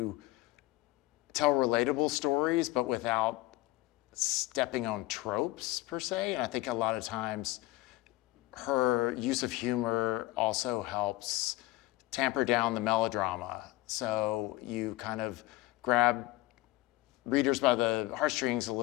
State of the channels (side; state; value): right; quieter; 18.6 dB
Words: tell relatable stories, but without stepping on tropes per se. And I think a lot of times her use of humor also helps tamper down the melodrama. So you kind of grab readers by the heartstrings a